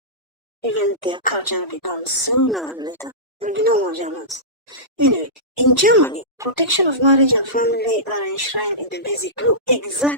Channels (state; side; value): normal; both; correlation -0.19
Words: even their culture will be gone sooner or later. There will be no more Germans. Anyway, in Germany, protection of marriage and family are enshrined in the basic law,